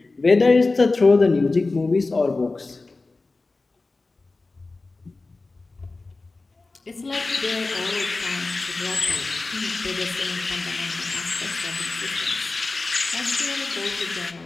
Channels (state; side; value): quieter; right; 3.5 dB